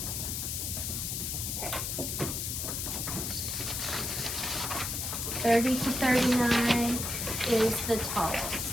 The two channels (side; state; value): left; noise; hiss, 2 dB below the sound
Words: Okay. 30 to 39 is the tallest.